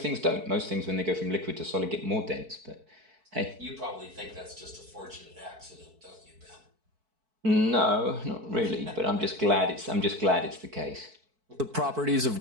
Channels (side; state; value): left; late; 4.5 ms